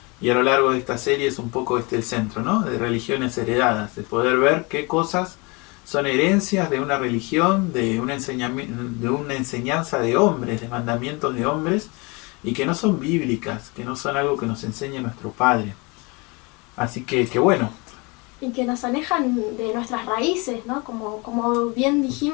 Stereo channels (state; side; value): quieter; right; 28.0 dB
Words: Y a lo largo de esta serie es un poco el centro, ¿no? De religiones heredadas, de poder ver qué cosas son herencias de una religión, de una enseñanza de hombres, de mandamientos de hombres, y que no son bíblicas, que no son algo que nos enseñe nuestro Padre. Así que bueno. Y que nos alejan de nuestras raíces, ¿no? Como bien